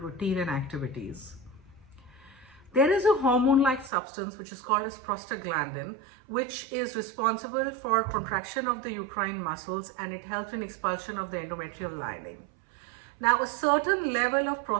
and activities. There is a hormone-like substance which is called as prostaglandin, which is responsible for contraction of the uterine muscles and it helps in expulsion of the endometrial lining. Now, a certain level of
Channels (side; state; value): left; drops out; at 3.9 s